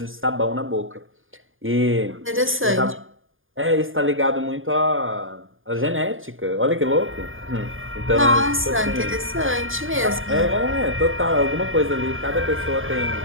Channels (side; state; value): left; late; 0.59 ms